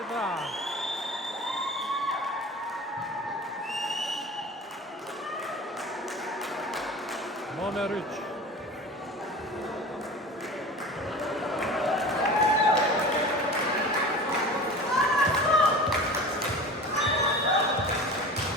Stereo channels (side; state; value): both; normal; correlation 0.36